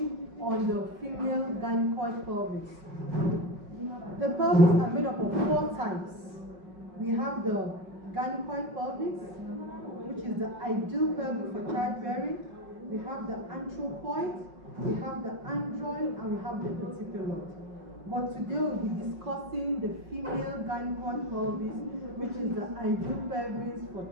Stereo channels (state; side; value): late; left; 5.5 ms